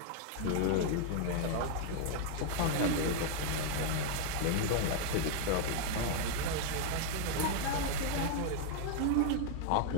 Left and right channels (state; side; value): different; both; correlation -0.01